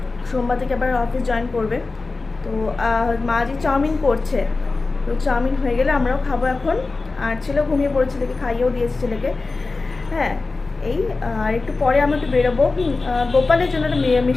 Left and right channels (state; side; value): quieter; right; 3.7 dB